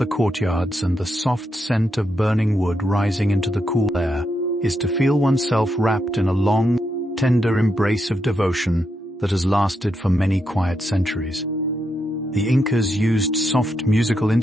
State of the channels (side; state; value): both; normal; correlation 0.82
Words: courtyards and the soft scent of burning wood rising into the cool air, is to feel oneself wrapped in a long, tender embrace of devotion that has lasted for many quiet centuries. The Incas used soft musical